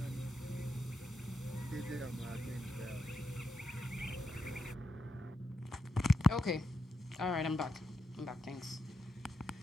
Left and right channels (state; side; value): normal; both; correlation 0.84